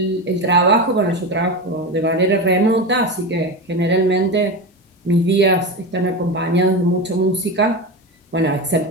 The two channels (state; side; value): normal; both; correlation 0.20